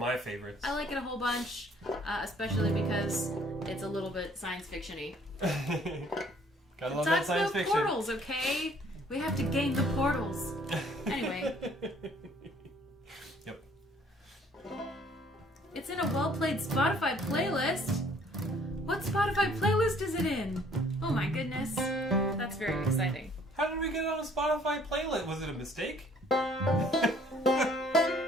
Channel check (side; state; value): both; normal; correlation 0.59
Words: favorites. I like it a whole bunch, especially because it's a little bit science fiction-y. Gotta love It that talks science about fiction. portals, okay? We have to gain the portals. Anyway. Yep. It's in a well-played Spotify playlist. What Spotify playlist is it in? Oh my goodness. That's very exciting. How did we get on a Spotify playlist? Was it a mistake?